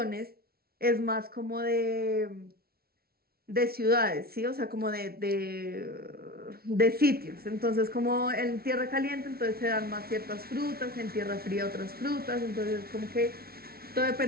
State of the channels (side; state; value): left; late; 0.44 ms